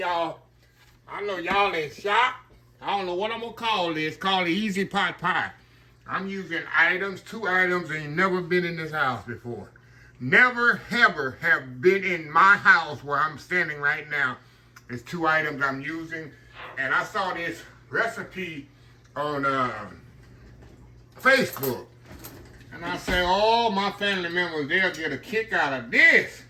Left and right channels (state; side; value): identical; both; correlation 1.00